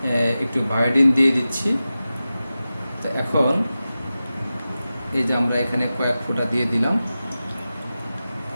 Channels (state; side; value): inverted; both; correlation -0.94